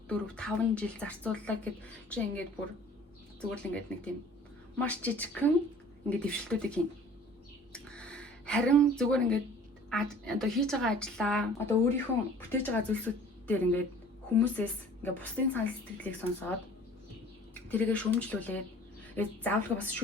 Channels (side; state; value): both; normal; correlation 0.49